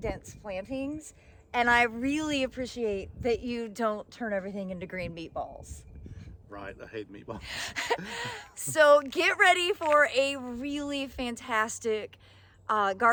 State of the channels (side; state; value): both; identical; correlation 1.00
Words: plantings, and I really appreciate that you don't turn everything into green meatballs. Right, I hate meatballs. So get ready for a really fantastic